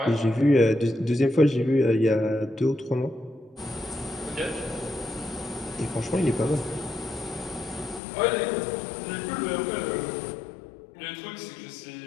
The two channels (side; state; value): right; drops out; at 8.0 s